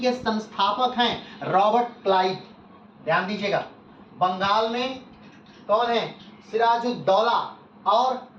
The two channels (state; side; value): identical; both; correlation 1.00